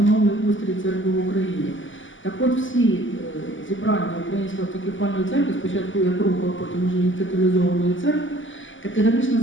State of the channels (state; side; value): late; right; 0.56 ms